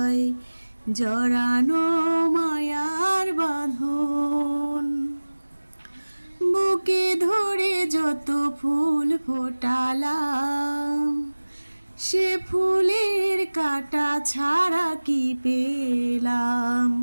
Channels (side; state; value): both; inverted; correlation -1.00